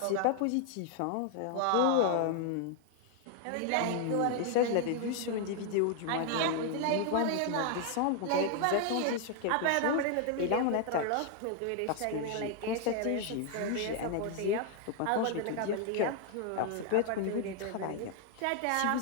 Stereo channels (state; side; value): different; both; correlation 0.00